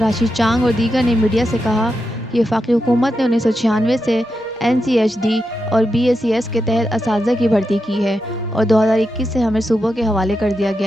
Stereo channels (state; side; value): normal; both; correlation 0.87